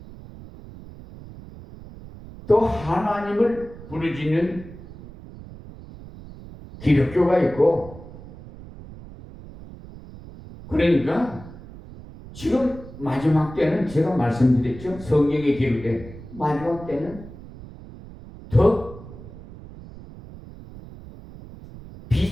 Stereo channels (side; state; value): right; noise; rumble, 16 dB below the sound